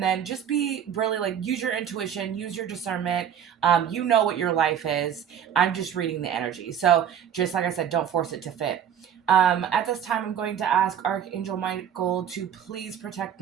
just be really like, use your intuition, use your discernment. You know what your life is. I'm just reading the energy. So just like I said, don't force it to fit. At this time, I'm going to ask Archangel Michael to please protect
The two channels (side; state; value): left; quieter; 9.0 dB